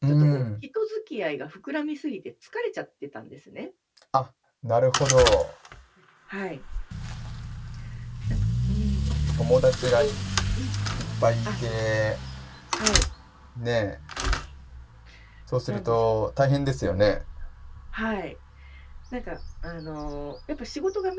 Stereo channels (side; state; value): both; identical; correlation 1.00